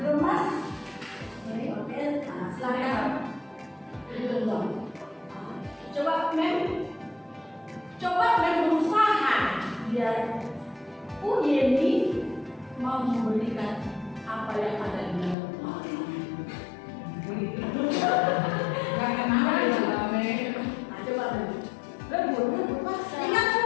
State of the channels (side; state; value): right; drops out; at 15.4 s